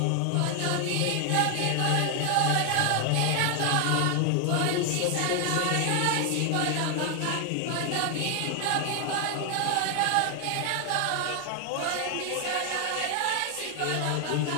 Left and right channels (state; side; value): different; both; correlation 0.00